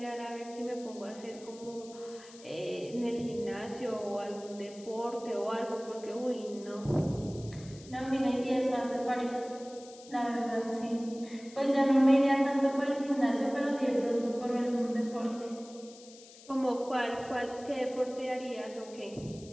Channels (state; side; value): noise; left; hiss, 20 dB below the sound